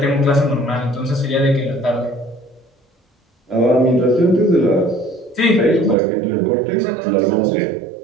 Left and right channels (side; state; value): left; drops out; at 6.0 s